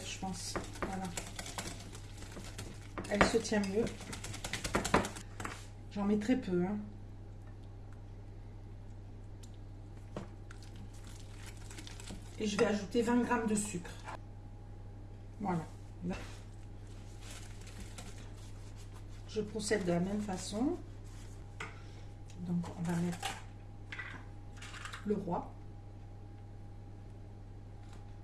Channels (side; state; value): both; identical; correlation 1.00